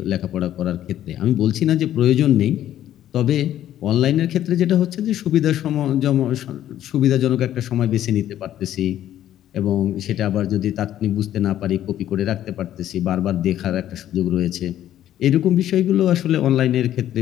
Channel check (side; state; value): right; quieter; 12.0 dB